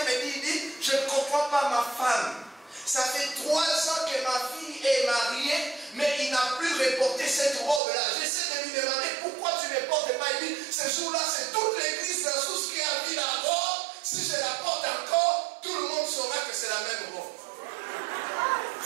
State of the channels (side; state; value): left; drops out; at 7.8 s